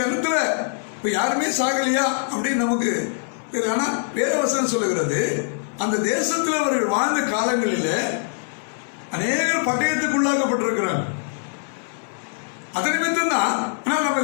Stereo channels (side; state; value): right; silent; 63 dB below the other